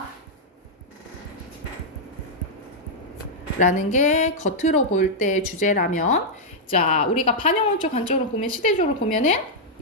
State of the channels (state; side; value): normal; both; correlation -0.05